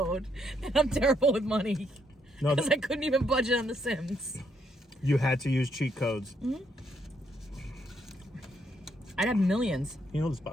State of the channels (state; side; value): normal; both; correlation 0.74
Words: And I'm terrible with money. No, Because I couldn't even budget on The Sims. you had to use cheat codes. I'd have millions. You know this